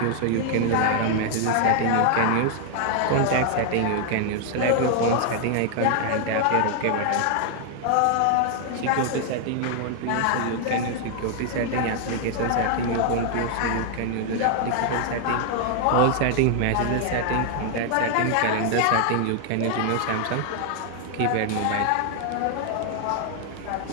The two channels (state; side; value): different; both; correlation 0.00